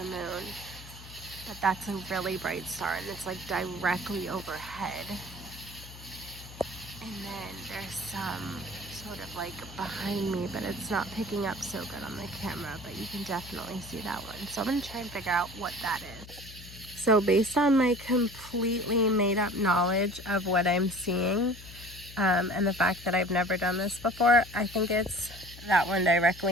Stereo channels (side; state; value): left; noise; hum, 16 dB below the sound